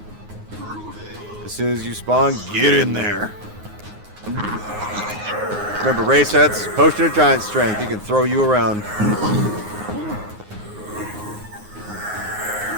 As soon as you spawn, get in there. Remember, VRChat, potion of giant strength. He can throw you around.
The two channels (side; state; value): left; late; 9.6 ms